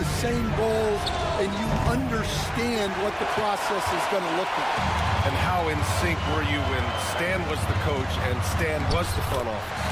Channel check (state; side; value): identical; both; correlation 1.00